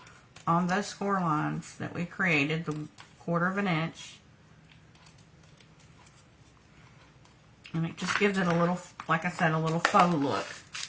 on those score lines that we created, the 1/4 inch. And it just gives it a little, like I said, a little faux look.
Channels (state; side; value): identical; both; correlation 1.00